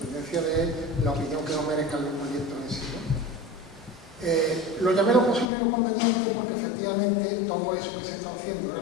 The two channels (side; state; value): right; drops out; at 5.5 s